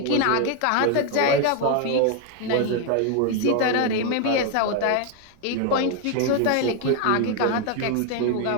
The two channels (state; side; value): different; both; correlation 0.01